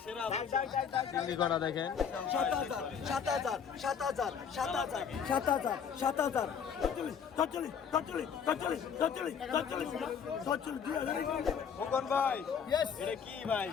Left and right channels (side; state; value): right; quieter; 7.2 dB